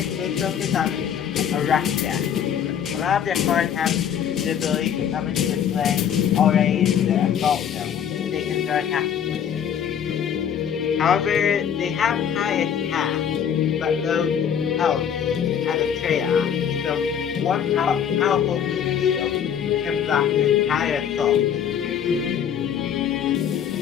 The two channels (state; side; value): quieter; right; 8.6 dB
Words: they focus on a rush deck. A lot of their cards have the ability to come into play already in the assault zone, which they can start attacking. However, they have high attack, but low health as a trade-off. So one powerful meat shield can block the entire assault.